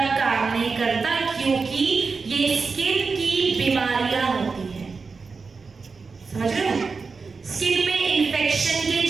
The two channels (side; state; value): left; quieter; 4.7 dB